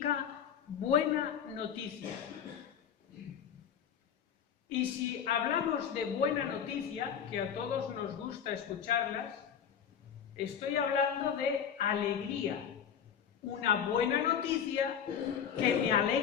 buena noticia. Y si hablamos de buena noticia, que a todos nos gusta escucharlas, estoy hablando de alegría. Una buena noticia que me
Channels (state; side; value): quieter; right; 8.2 dB